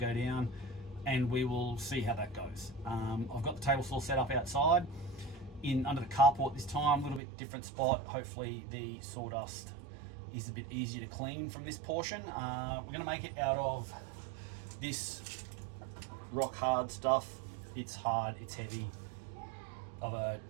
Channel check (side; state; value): left; drops out; at 7.2 s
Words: down, and we will see how that goes. I've got the table saw set up outside under the carport this time, a little bit different spot. Hopefully the sawdust is a bit easier to clean from this portion. We're going to make it out of this rock hard stuff. It's hard, it's heavy, of a